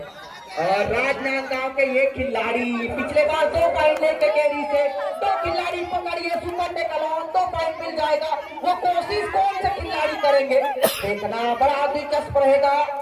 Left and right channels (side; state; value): both; identical; correlation 1.00